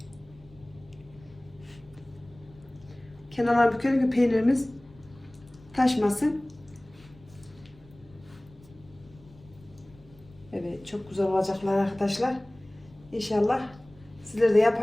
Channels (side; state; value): left; noise; rumble, 25 dB below the sound